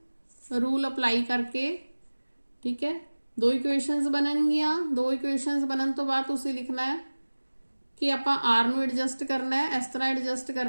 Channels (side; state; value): both; inverted; correlation -1.00